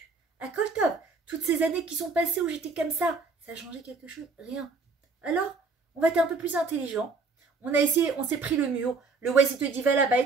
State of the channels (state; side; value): quieter; left; 4.2 dB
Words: à top, toutes ces années qui sont passées où j'étais comme ça a changé quelque chose? Rien. Alors, on va être un peu plus intelligent. On a essayé, on s'est pris le mur. Le Waze, il te dit, va là-bas et